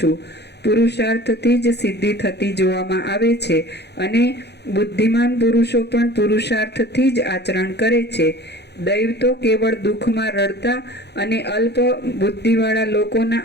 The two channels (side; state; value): right; late; 0.49 ms